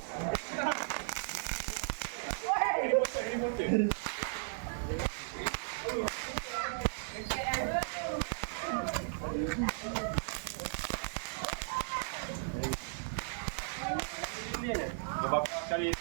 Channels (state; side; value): silent; left; digital silence